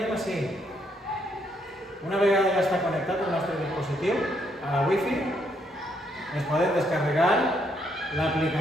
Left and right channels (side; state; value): both; normal; correlation 0.74